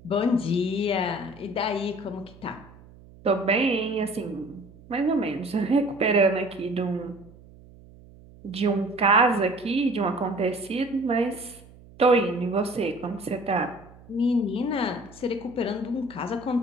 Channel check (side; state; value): right; noise; hum, 22 dB below the sound